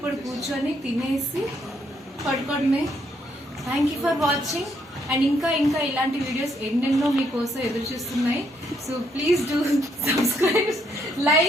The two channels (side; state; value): both; normal; correlation 0.73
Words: కూర్చొని తినేసి పడుకోవడమే. Thank you for watching. And ఇంకా ఇలాంటి వీడియోస్ ఎన్నెన్నో మీకోసం ఎదురు చూస్తున్నాయి. So please do subscribe,